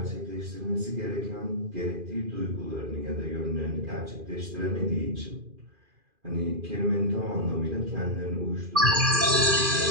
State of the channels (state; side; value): late; left; 2.4 ms